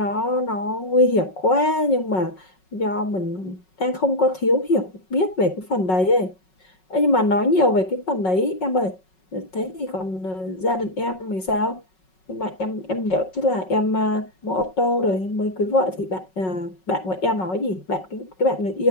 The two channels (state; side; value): late; right; 5.4 ms